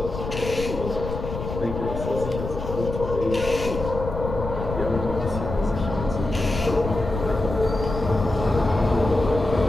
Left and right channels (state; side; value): noise; left; rumble, 6 dB below the sound